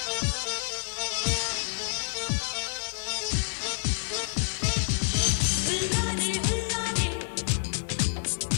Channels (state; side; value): silent; right; digital silence